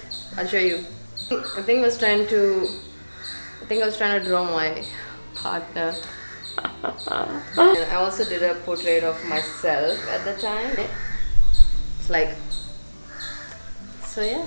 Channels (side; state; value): both; inverted; correlation -1.00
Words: I'll show you. I think I was trying to draw my partner. And I also did a portrait of myself at the time. It's like, so yeah,